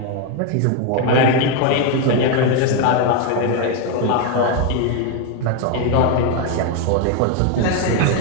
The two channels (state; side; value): different; both; correlation 0.01